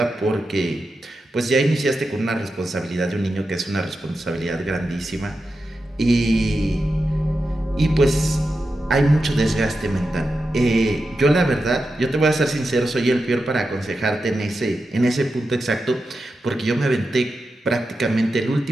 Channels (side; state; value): both; normal; correlation 0.90